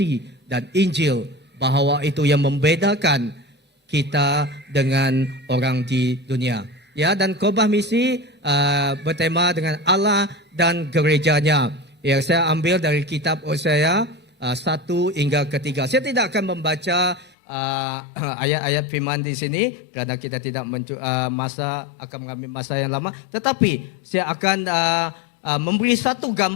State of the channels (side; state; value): right; drops out; at 17.3 s